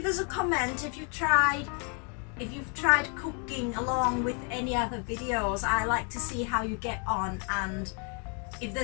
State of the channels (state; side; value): quieter; right; 37.9 dB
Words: us a comment if you've tried cooking along with any other videos. I like to see how you get on, and if